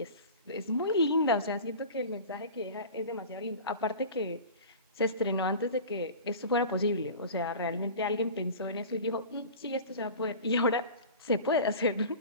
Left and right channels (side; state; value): both; inverted; correlation -0.37